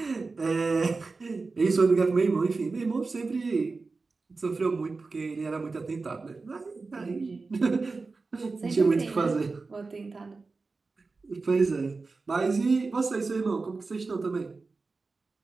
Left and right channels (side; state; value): left; quieter; 4.0 dB